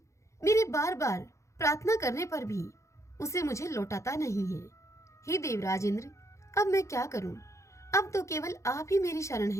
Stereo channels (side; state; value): right; late; 0.14 ms